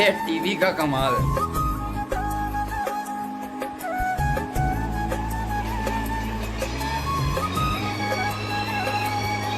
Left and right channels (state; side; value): identical; both; correlation 1.00